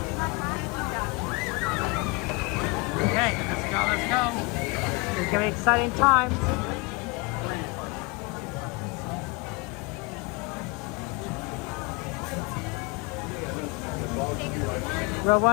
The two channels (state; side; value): quieter; right; 28.2 dB